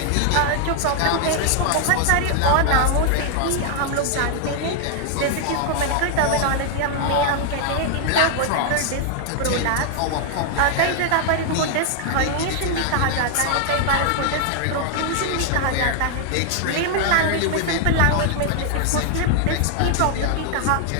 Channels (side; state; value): both; different; correlation 0.00